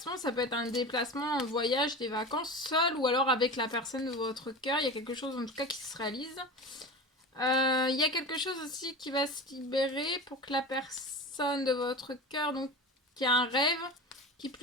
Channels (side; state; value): both; normal; correlation 0.30